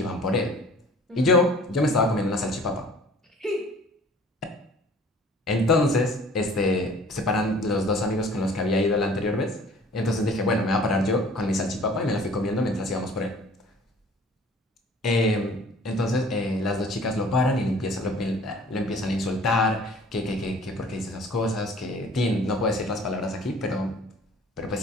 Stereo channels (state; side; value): normal; both; correlation 0.50